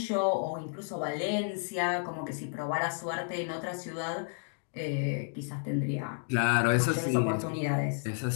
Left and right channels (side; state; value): right; silent; digital silence